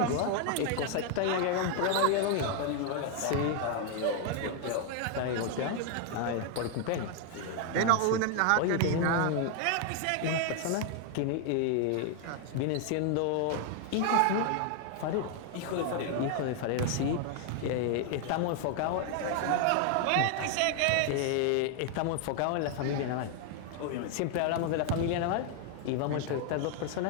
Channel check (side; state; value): both; different; correlation 0.00